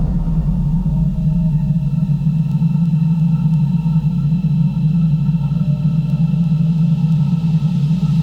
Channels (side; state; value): both; identical; correlation 1.00